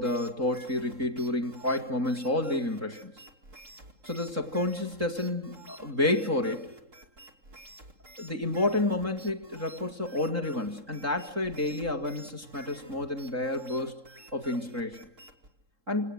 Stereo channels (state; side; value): late; left; 3.7 ms